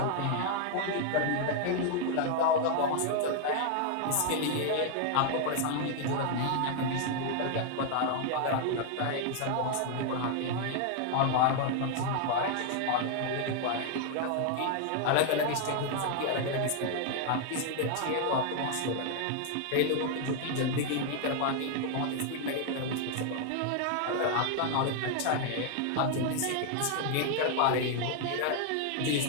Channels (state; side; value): different; both; correlation 0.00